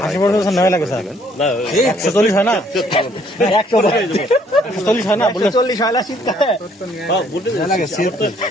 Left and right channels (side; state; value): both; normal; correlation 0.64